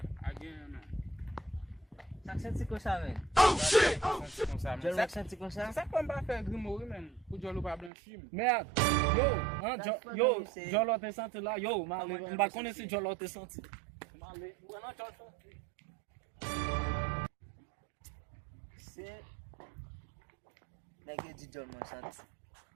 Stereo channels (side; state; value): left; drops out; at 7.9 s